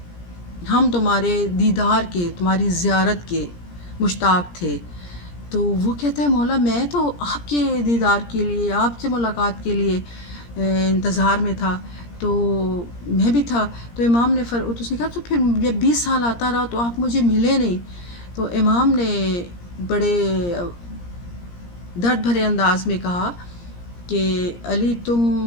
ہم تمہارے دیدار کے، تمہاری زیارت کے مشتاق تھے۔ تو وہ کہتا ہے مولا میں تو آپ کے دیدار کے لیے، آپ سے ملاقات کے لیے انتظار میں تھا، تو میں بھی تھا۔ تو امام نے اس نے کہا تو پھر جب 20 سال آتا رہا تو آپ مجھے ملے نہیں۔ تو امام نے بڑے درد بھرے انداز میں کہا کہ علی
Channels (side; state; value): right; late; 17 ms